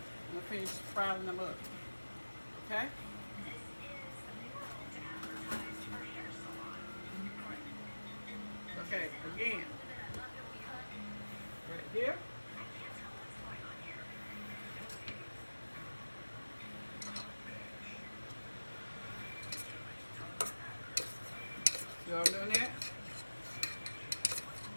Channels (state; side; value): inverted; both; correlation -1.00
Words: finished frying them up. Okay? Okay, again, right here. See what I'm doing there?